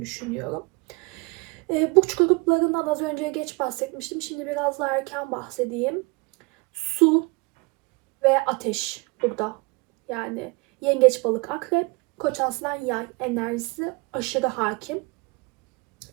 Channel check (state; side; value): quieter; left; 28.4 dB